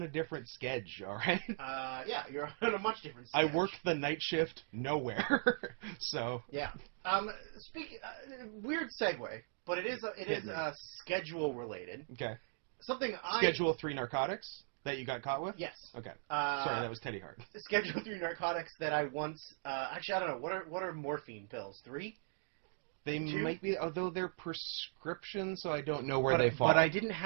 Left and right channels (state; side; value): silent; left; digital silence